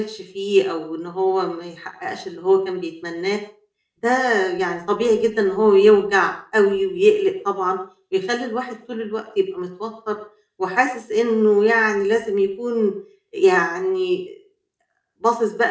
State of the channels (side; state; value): both; identical; correlation 1.00